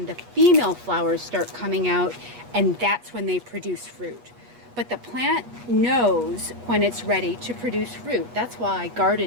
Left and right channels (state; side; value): late; left; 8.3 ms